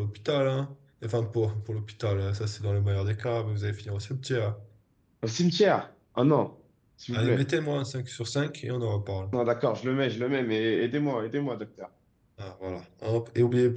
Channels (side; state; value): both; identical; correlation 1.00